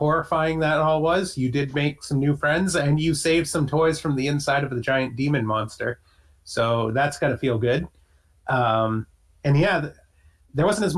that all was, you did make some new friends and you saved some toys from the inside of the giant demon monster. So that's got to feel good. And yeah, there wasn't as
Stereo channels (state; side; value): identical; both; correlation 1.00